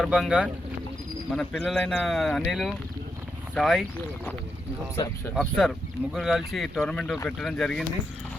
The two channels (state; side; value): normal; both; correlation 0.83